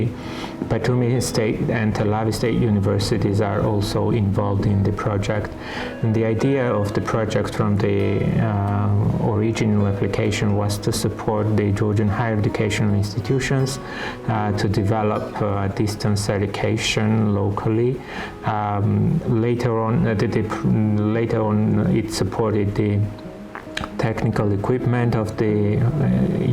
Batumi State and Tel Aviv State Universities are also involved in the project. And the idea of the project from the original application was to support the Georgian higher educational institutions to develop distance education locally. Later on, it supported the technical equipment of the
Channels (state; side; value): identical; both; correlation 1.00